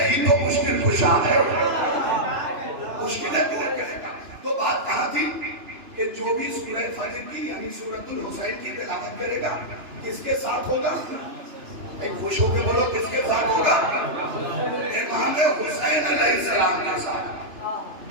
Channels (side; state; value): left; late; 2.9 ms